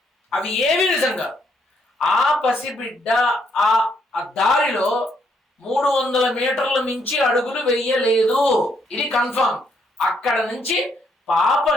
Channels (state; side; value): normal; both; correlation 0.73